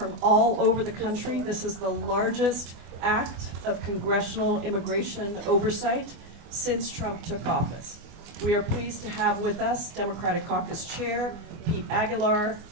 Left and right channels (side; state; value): left; late; 24 ms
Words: all over the country, this is the largest act of congressional immigration oversight since Trump took office. We are pleased to have with us Democratic Caucus Chair Pete Aguilar,